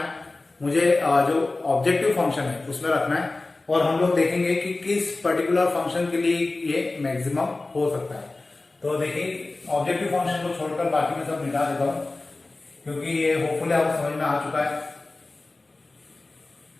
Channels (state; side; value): quieter; right; 3.2 dB